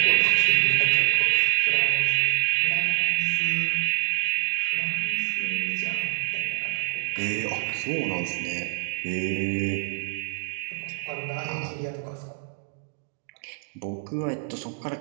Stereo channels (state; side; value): silent; left; digital silence